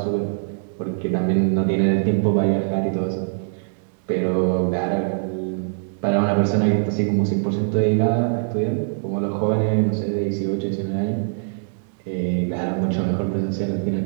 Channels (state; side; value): silent; left; digital silence